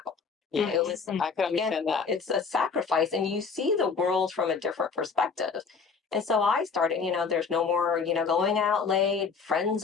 Yeah, It was, I can understand that. it's a sacrifice and you see the world from a different perspective. And so I started, there's no more, going out late, friends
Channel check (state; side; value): quieter; right; 5.3 dB